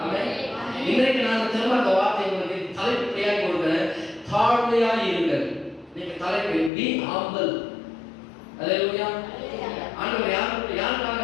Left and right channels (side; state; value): right; drops out; at 6.7 s